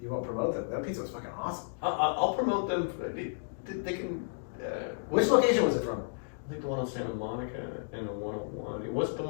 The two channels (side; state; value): right; silent; digital silence